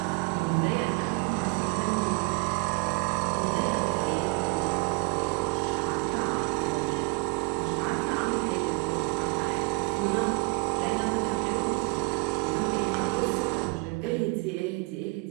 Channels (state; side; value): quieter; left; 26.6 dB